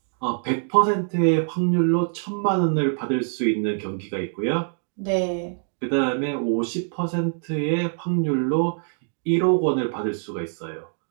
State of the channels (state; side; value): silent; left; digital silence